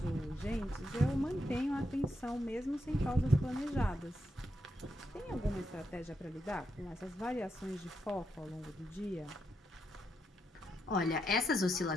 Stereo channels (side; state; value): both; normal; correlation 0.82